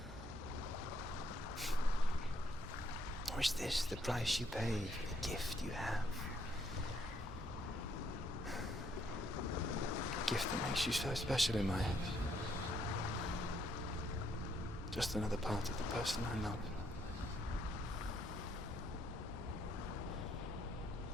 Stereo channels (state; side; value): normal; both; correlation 0.71